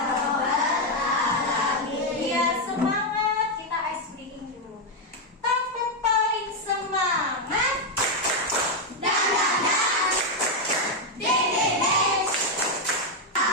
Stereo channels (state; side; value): normal; both; correlation 0.03